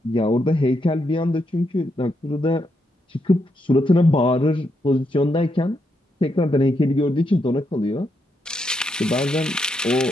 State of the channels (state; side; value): normal; both; correlation 0.80